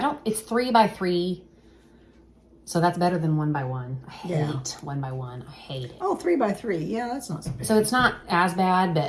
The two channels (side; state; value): both; identical; correlation 1.00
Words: it's 3x3. So that's better than 1x1. I hate 1x1. I hate it. Oh, 3x3. Yeah, that's not so bad. So it's not as bad,